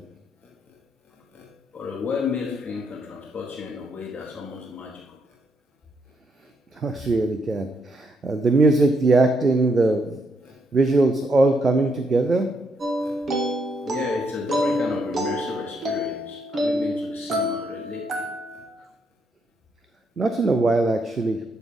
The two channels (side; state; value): both; normal; correlation 0.76